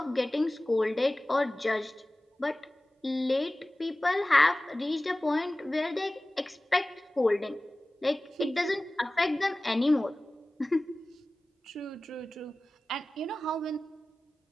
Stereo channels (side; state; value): both; normal; correlation 0.97